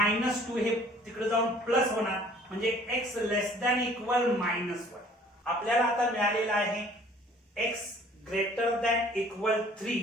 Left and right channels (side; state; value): both; normal; correlation 0.54